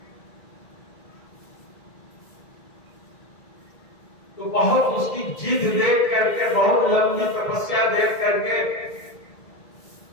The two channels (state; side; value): late; right; 1.9 ms